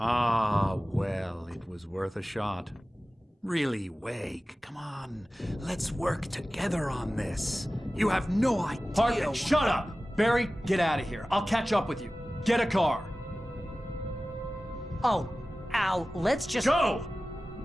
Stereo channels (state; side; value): normal; both; correlation 0.96